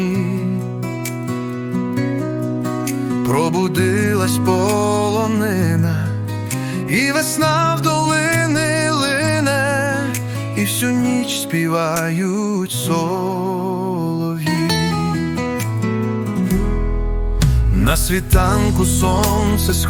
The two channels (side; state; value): both; identical; correlation 1.00